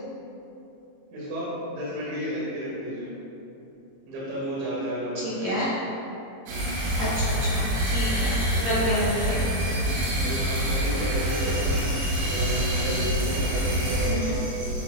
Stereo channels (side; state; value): left; late; 22 ms